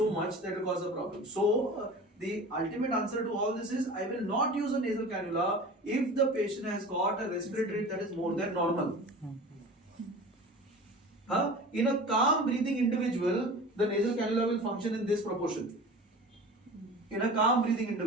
much that will cause a problem. So the ultimate answer to all this is I will not use a nasal cannula if the patient has got a respiratory rate that is more than normal. In a calm breathing individual, the nasal cannula will function in this proportion. In a calm breathing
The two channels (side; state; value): both; normal; correlation 0.37